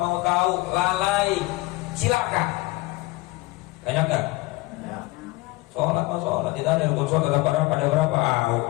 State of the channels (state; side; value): quieter; right; 21.2 dB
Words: tahu. Lalai, silakan. Banyak gak? Sholat mau sholat, tidak ada rukun sholat, ada berapa?